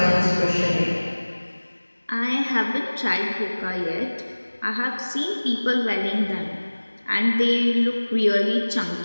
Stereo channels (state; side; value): inverted; both; correlation -1.00